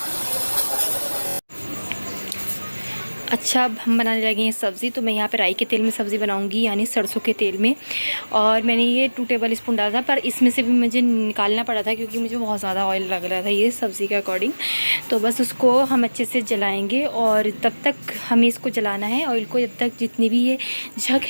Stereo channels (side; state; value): both; inverted; correlation -1.00